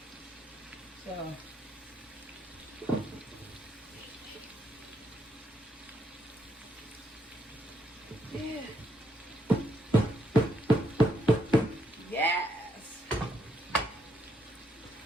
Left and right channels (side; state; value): both; normal; correlation 0.76